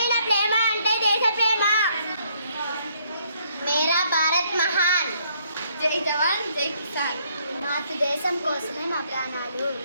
ప్రేమ అంటే దేశ ప్రేమ. మేరా భారత్ మహాన్. జై జవాన్ జై కిసాన్. మాతృదేశం కోసమే మా ప్రాణాలు.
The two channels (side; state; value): both; inverted; correlation -0.68